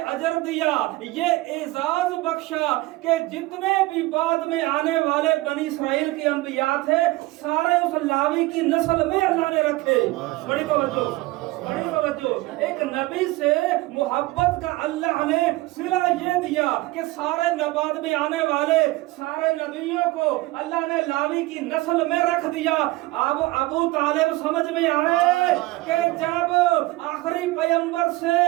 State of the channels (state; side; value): quieter; left; 19.7 dB